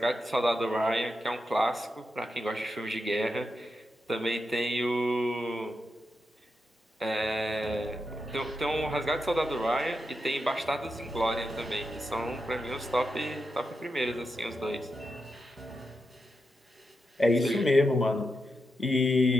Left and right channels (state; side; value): normal; both; correlation 0.86